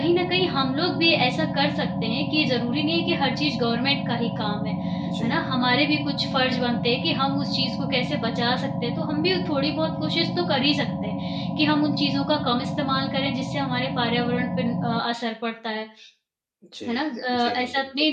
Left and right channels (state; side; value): identical; both; correlation 1.00